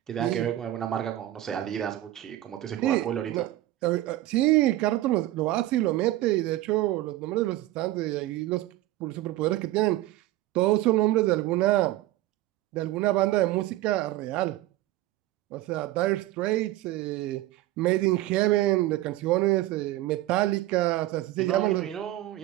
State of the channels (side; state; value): left; quieter; 15.6 dB